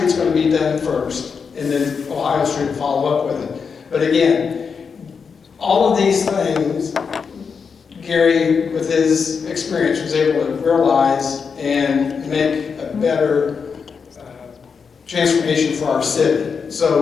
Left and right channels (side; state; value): right; quieter; 5.8 dB